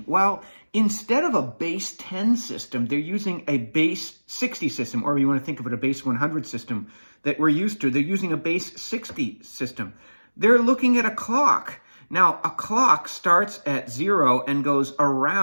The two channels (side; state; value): both; inverted; correlation -1.00